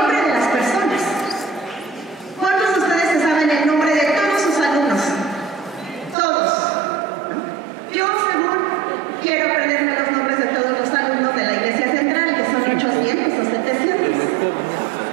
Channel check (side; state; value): left; drops out; at 6.2 s